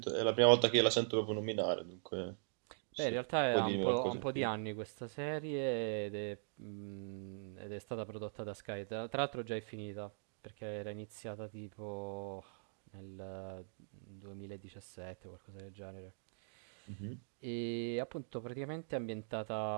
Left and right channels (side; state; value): left; silent; digital silence